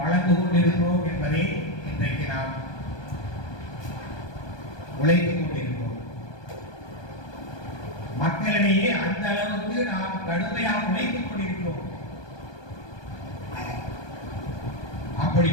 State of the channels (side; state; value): right; late; 1.2 ms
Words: வளர்ந்து கொண்டிருக்கிறோம் என்பதை இன்றைக்கு நாம் உழைத்துக் கொண்டிருக்கிறோம். மக்களிடையே அந்த அளவுக்கு நாம் கடுமையாக உழைத்துக் கொண்டிருக்கிறோம். அப்படி